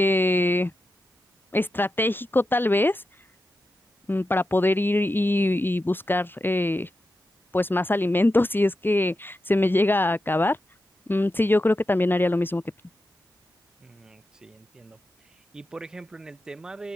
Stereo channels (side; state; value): both; normal; correlation 0.89